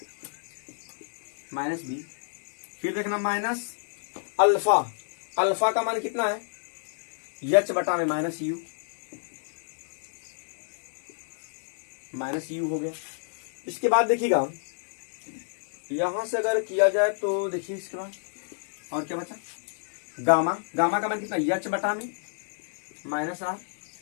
माइनस b। फिर देखना माइनस अल्फा, अल्फा का मान कितना है h बटा में माइनस u, माइनस u हो गया। इसके बाद देखिएगा यहां से अगर किया जाए तो देखिए इसके बाद और क्या बचा, गामा, गामा का मान कितना h बटा में माइनस r।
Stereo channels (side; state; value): right; silent; digital silence